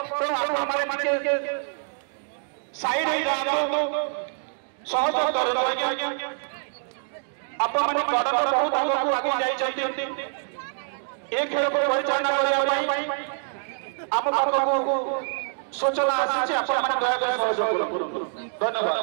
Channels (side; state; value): left; silent; digital silence